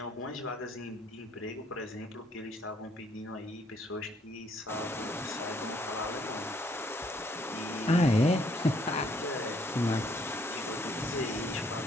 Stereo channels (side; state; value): both; normal; correlation 0.67